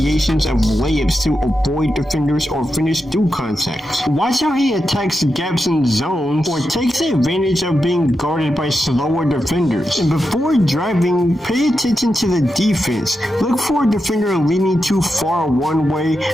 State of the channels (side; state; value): both; normal; correlation 0.88